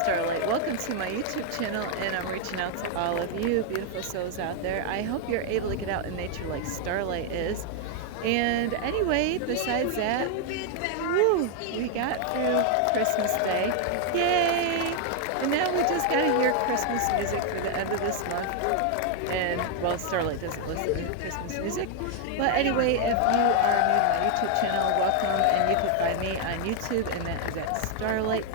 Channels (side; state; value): both; different; correlation 0.00